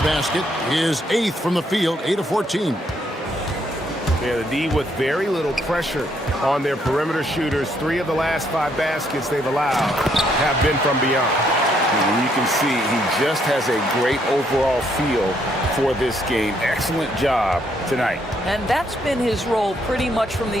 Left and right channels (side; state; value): both; normal; correlation 0.72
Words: basket. His 8th from the field, 8 of 14. Yeah, the D with very little pressure on their perimeter shooters. 3 of the last 5 baskets they've allowed have been from beyond. And you can see he just has a great overall feel for this game. Excellent job tonight. And that's been his role pretty much from